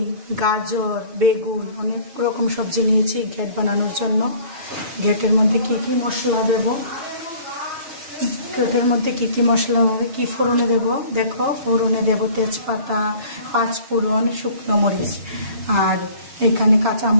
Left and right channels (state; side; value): late; left; 6.3 ms